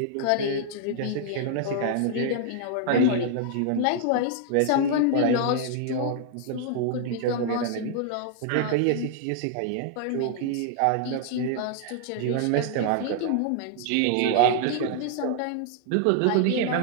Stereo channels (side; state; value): both; different; correlation 0.00